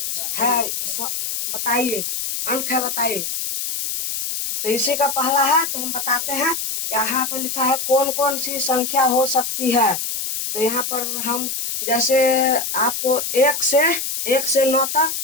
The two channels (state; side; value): noise; left; hiss, 3 dB below the sound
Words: है, बताइए। अंक है, बताइए। तो इसी का पहला है, तो हम बताते हैं। यहाँ पर लिखा है कौन कौन सी संख्या हो सकती है। तो यहाँ पर हम जैसे आपको 1 से 9 तक